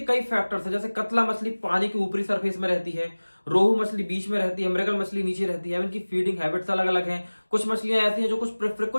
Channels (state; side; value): inverted; both; correlation -1.00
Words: कई फैक्टर्स हैं, जैसे कतला मछली पानी के ऊपरी सरफेस में रहती है, रोहू मछली बीच में रहती है, मृगल मछली नीचे रहती है। इनकी फीडिंग हैबिट्स अलग अलग हैं। कुछ मछलियां ऐसी हैं जो